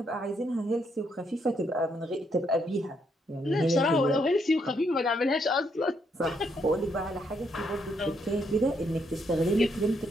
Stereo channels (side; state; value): both; normal; correlation 0.75